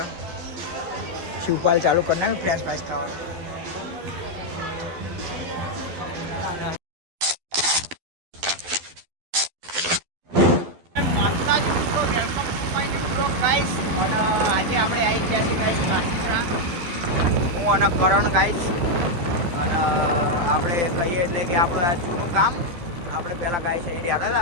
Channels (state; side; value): late; left; 12 ms